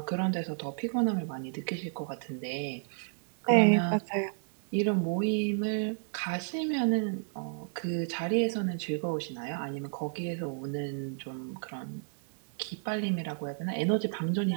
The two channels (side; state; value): left; silent; 57 dB below the other